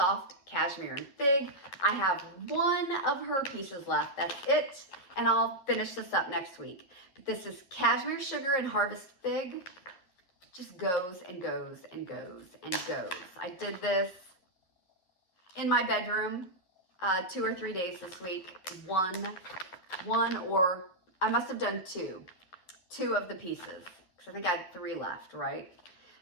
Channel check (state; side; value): late; right; 11 ms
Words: Cashmere and Fig. I have 1 of her pieces left. That's it. And I'll finish this up next week. But this is Cashmere Sugar and Harvest Fig. Just goes and goes and goes and goes. I did this in my bedroom 2 or 3 days this week. One or I must have done 2 of the pieces because I think I had 3 left, right?